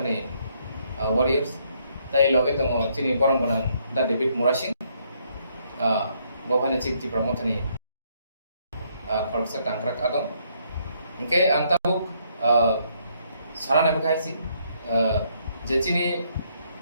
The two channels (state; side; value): inverted; both; correlation -0.71